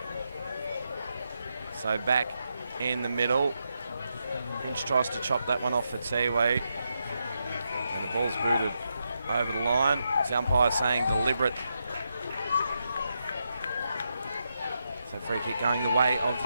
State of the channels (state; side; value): inverted; both; correlation -0.84